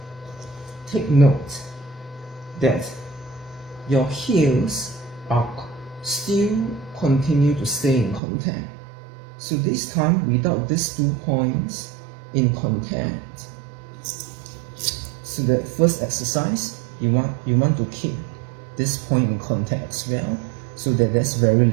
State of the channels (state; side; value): drops out; left; at 8.2 s